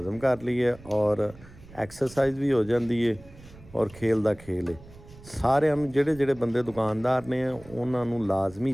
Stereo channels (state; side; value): noise; right; rumble, 21 dB below the sound